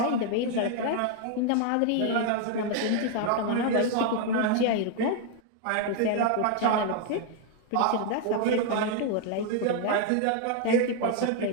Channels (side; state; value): both; different; correlation 0.00